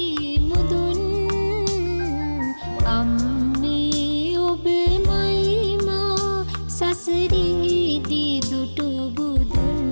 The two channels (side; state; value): both; inverted; correlation -1.00